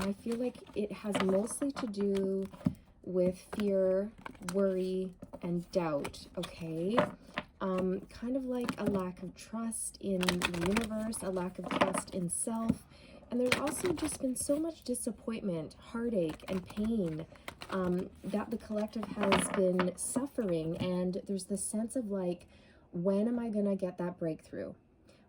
I feel like it has mostly to do with fear, worry, and doubt, okay? Kind of like a lack of trust in the universe, a lack of trust in self. And there's also just been so much disappointment, heartache, and pain that the collective has been suffering. And there's this sense of like, when am I gonna get that breakthrough?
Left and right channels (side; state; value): both; identical; correlation 1.00